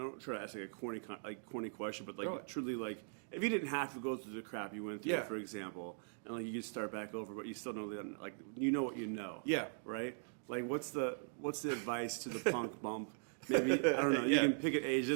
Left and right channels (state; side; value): silent; left; digital silence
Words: try to ask like a corny question, but like truly, like if you didn't have to go through the crap you went through, for example, and like you could start back over, but you still know that, like you know what you know. Yeah. Right. Like what's the advice to the punk bump? Maybe I don't know. You can pick an age. It